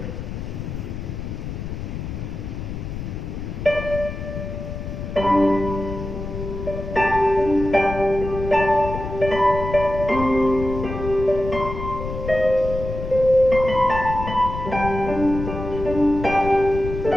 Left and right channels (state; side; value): noise; left; rumble, 7 dB below the sound